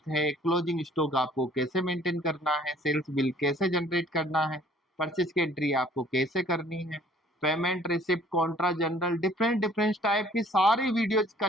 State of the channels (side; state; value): both; normal; correlation 0.56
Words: है, क्लोजिंग स्टॉक आपको कैसे मेंटेन करना है, सेल्स बिल कैसे जनरेट करना है, परचेज की एंट्री आपको कैसे करनी है, payment receipt Contra general, different different type की सारी वीडियोज